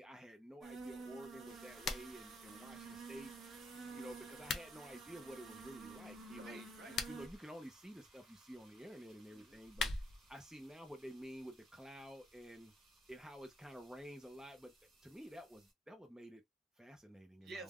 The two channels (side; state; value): both; normal; correlation 0.74